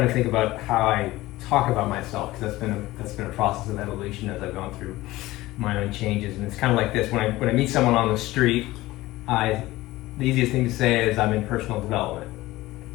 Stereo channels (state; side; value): quieter; right; 18.0 dB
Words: to think about how I talk about myself, because that's been a process of evolution as I've gone through my own changes, and it's kind of like this. When I meet someone on the street, the easiest thing to say is I'm in personal development,